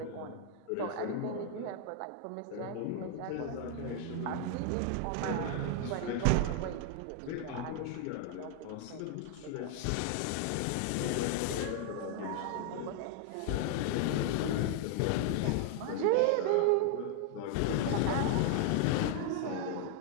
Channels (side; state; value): both; different; correlation 0.00